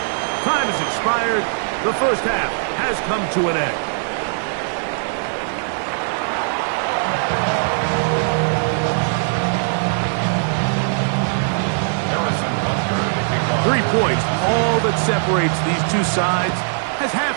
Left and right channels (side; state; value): left; silent; 66 dB below the other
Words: Time has expired. The first half has come to an end. Harrison Butker to kick off. 3 points, all that separates these two sides, as half